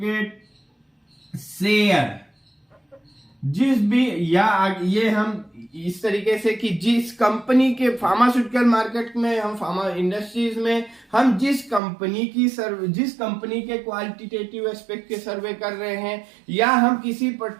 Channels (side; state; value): left; drops out; at 11.8 s